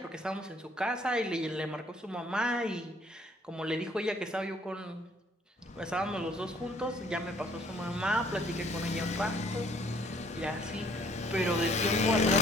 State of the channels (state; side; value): normal; both; correlation 0.61